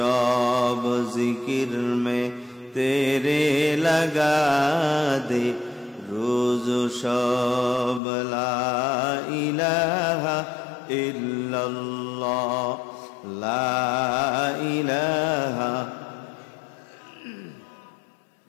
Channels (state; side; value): drops out; right; at 8.0 s